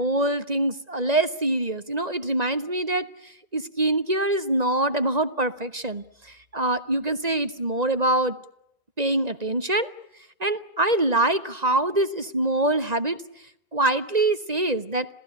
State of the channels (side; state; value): left; late; 1.9 ms